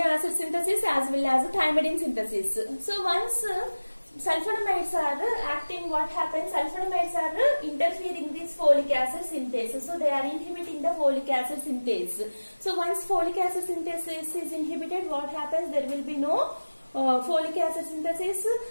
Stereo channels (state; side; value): inverted; both; correlation -1.00